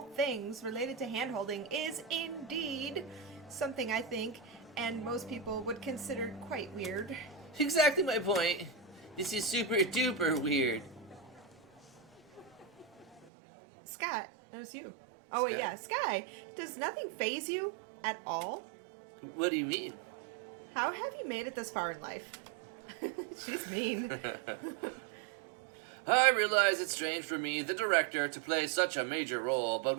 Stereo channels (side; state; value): left; drops out; at 13.2 s